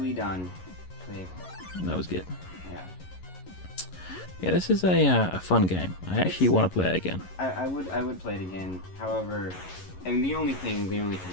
done. Dave. That was good. Yeah. Yeah, this is a fun game. I actually want to play it again. I would play it again. However, I mean, the only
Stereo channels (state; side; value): late; right; 11 ms